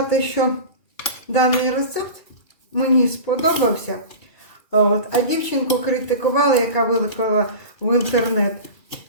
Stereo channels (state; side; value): late; right; 2.4 ms